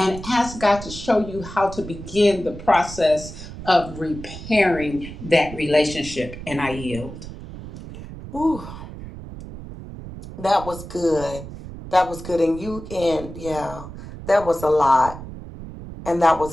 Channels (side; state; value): right; noise; rumble, 12 dB below the sound